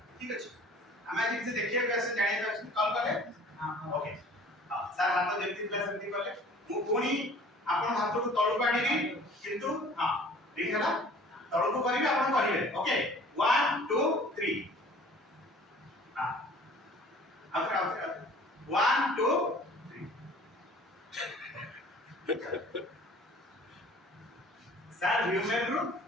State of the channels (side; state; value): both; normal; correlation 0.49